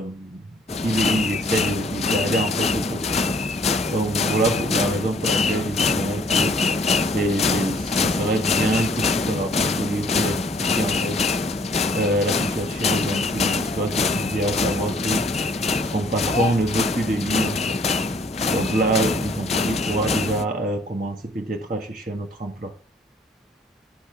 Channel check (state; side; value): normal; both; correlation 0.59